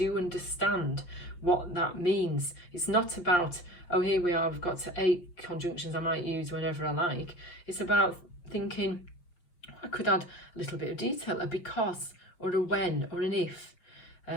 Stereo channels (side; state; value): right; late; 5.7 ms